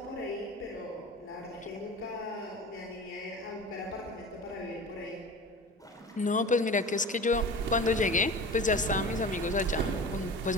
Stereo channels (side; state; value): both; normal; correlation 0.35